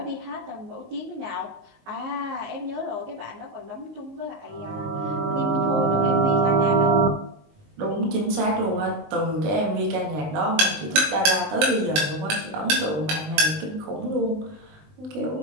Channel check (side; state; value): left; late; 19 ms